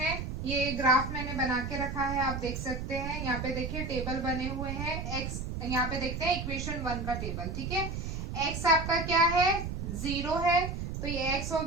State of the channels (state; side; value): noise; right; rumble, 5 dB below the sound